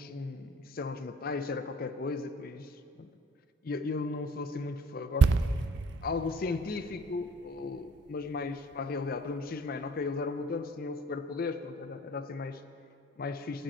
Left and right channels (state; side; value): normal; both; correlation 0.55